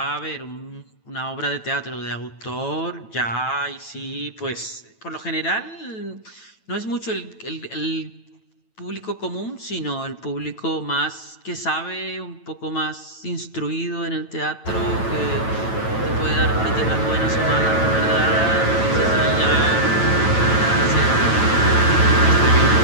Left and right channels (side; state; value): right; late; 9.1 ms